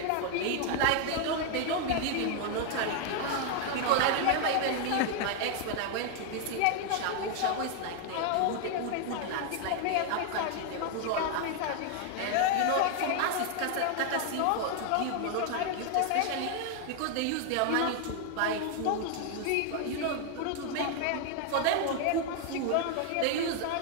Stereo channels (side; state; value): both; different; correlation 0.00